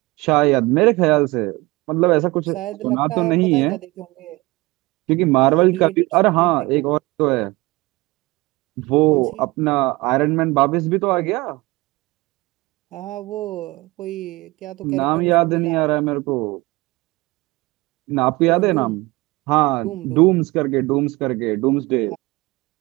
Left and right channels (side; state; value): left; quieter; 22.3 dB